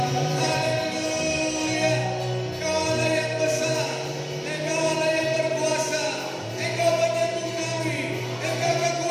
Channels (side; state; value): both; identical; correlation 1.00